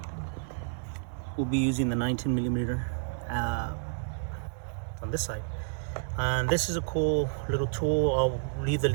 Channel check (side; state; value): left; silent; 58 dB below the other